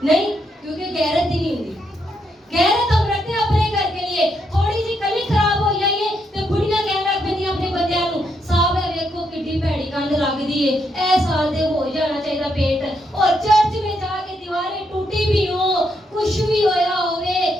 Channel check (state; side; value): normal; both; correlation 0.78